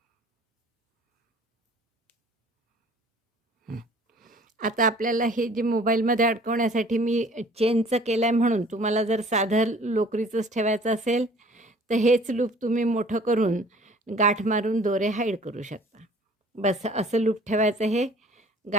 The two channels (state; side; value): normal; both; correlation 0.52